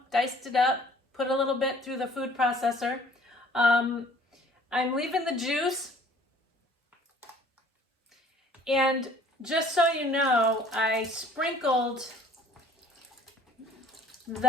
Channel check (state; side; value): normal; both; correlation 0.55